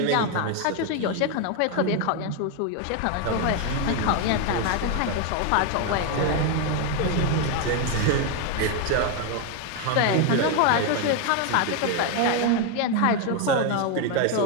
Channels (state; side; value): different; both; correlation 0.01